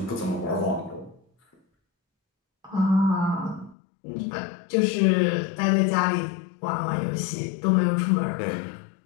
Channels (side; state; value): right; drops out; at 3.8 s